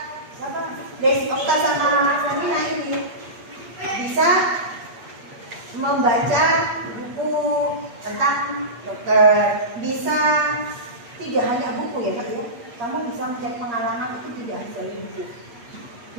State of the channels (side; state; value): left; late; 8.5 ms